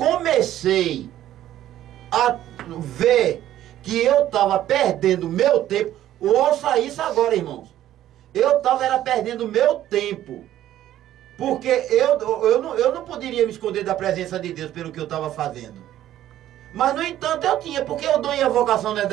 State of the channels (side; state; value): left; quieter; 12.7 dB